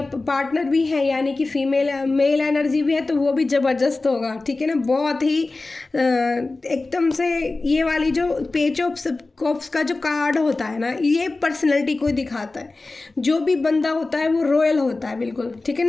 पार्टनर भी है यानी कि फीमेल मेल एनर्जी भी है तो वो भी ज़बरदस्त होगा, ठीक है ना। बहुत ही एकदम से ये वाली जो पेज ऑफ कप्स का जो कार्ड होता है ना, ये पर्सनैलिटी को दिखाता है। जो भी बंदा होता है वो रॉयल होता है बिल्कुल, ठीक है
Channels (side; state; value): right; quieter; 3.3 dB